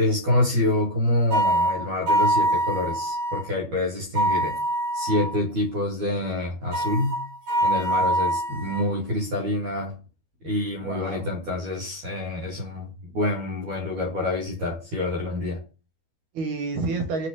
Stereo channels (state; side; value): late; left; 12 ms